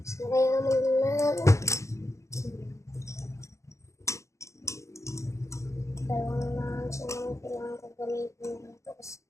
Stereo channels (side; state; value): right; late; 0.15 ms